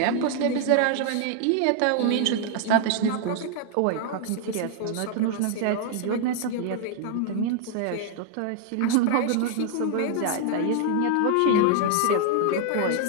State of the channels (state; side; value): different; both; correlation 0.00